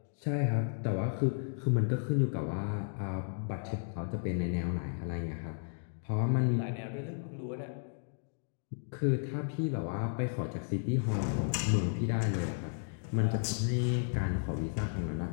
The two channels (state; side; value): silent; right; digital silence